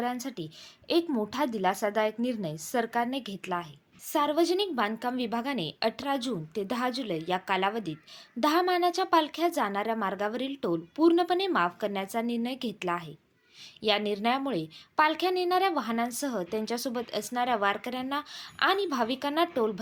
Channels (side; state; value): both; identical; correlation 1.00